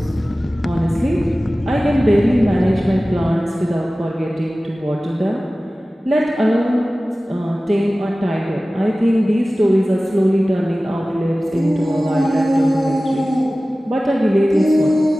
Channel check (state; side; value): normal; both; correlation 0.97